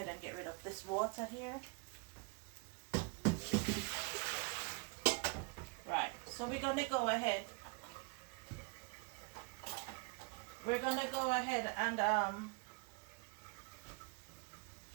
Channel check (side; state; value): left; quieter; 30.7 dB